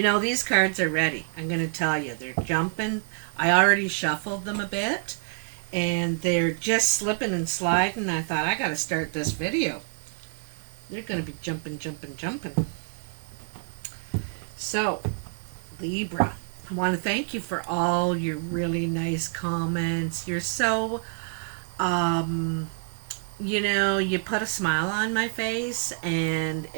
cards are ready. I'm going to tell you. They're jumping. I already shuffled them a bit. And they're just slipping and sliding. I thought, I got to start this video. They're going to be jumping, jumping, jumping. So, Libra, I want to thank you for all your really nice comments. You're so, you put a smile on my face and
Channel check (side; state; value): left; silent; digital silence